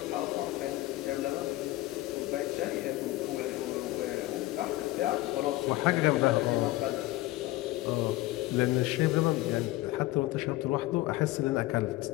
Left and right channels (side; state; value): right; quieter; 18.0 dB